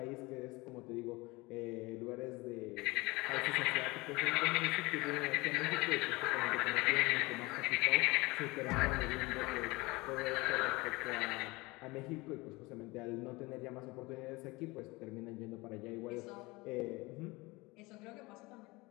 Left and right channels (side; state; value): right; quieter; 23.1 dB